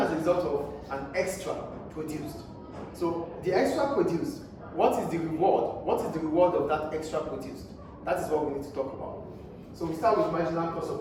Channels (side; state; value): both; identical; correlation 1.00